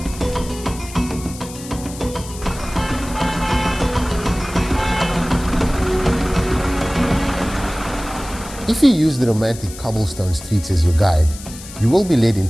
Bismillah. Bismillah. If you use the romantic cobblestone streets as your guide, you will be led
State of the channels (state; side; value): noise; left; hiss, 15 dB below the sound